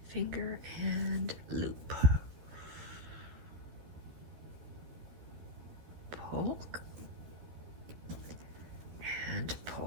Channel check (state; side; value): late; left; 13 ms